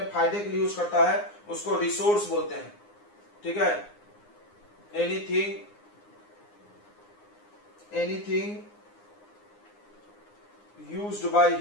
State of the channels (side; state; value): right; late; 9.7 ms